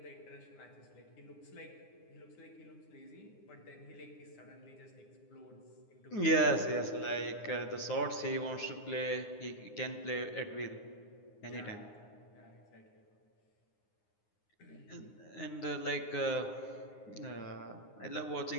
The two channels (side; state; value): right; late; 9.7 ms